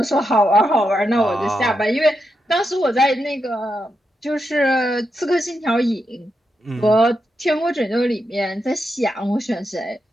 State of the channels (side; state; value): both; normal; correlation 0.85